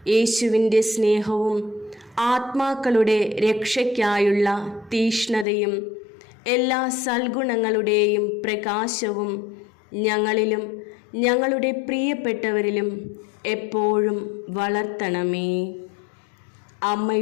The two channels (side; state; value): right; drops out; at 5.5 s